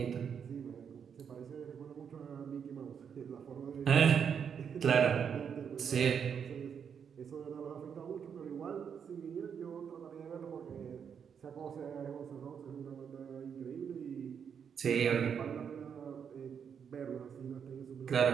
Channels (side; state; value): left; quieter; 7.4 dB